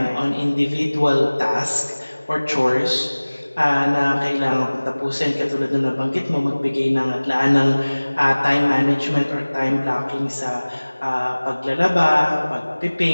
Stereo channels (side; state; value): both; inverted; correlation -1.00